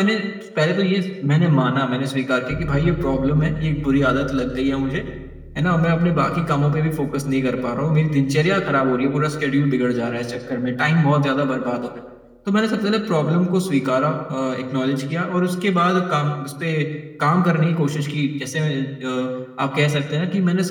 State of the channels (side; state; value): both; identical; correlation 1.00